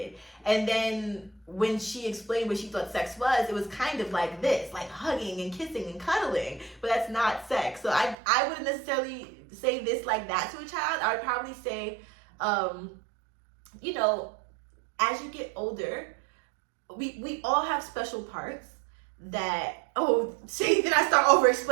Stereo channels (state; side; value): drops out; left; at 8.2 s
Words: And then when she explained what she thought sex was, it was kind of like this, like hugging and kissing and cuddling, but that's not sex. So I wouldn't necessarily say this like that to a child. I would probably say, you know, as you get older, we all have special parts that, then I start over